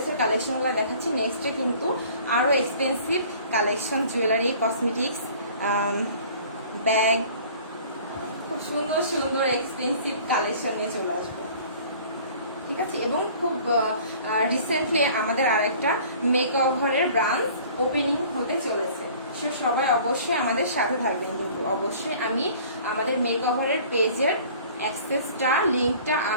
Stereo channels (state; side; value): inverted; both; correlation -0.49